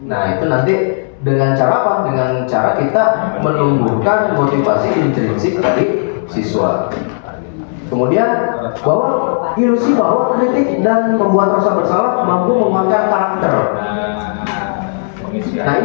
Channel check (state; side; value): silent; right; digital silence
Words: Nah, itu nanti dengan cara apa? Dengan cara kita menumbuhkan motivasi intrinsik dari siswa. Kemudian ilusi bahwa kritik dan membuat rasa bersalah mampu menguatkan karakter. Nah,